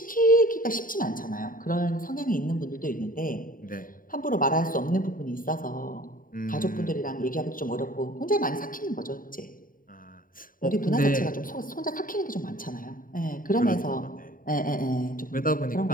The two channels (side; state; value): right; late; 0.40 ms